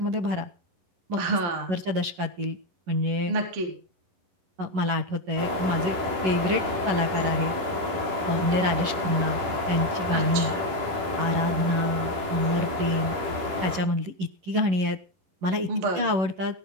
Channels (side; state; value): left; late; 11 ms